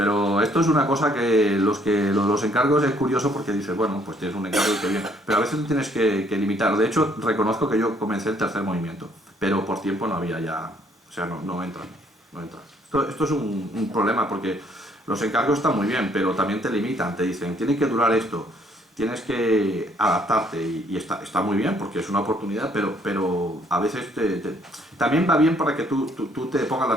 esto es una cosa que los encargos es curioso porque dices, bueno, pues tienes un encargo y qué bien. Pero a veces lo tienes que limitar. De hecho, reconozco que yo comencé el tercer movimiento, pero por tiempo no había ya, o sea, no entra. Esto es un problema porque los encargos están muy bien, pero también te limitan, te dicen, tiene que durar esto, tienes que adaptarte y está muy bien porque es una oportunidad, pero a veces también va bien para que tú te pongas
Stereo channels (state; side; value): normal; both; correlation 0.65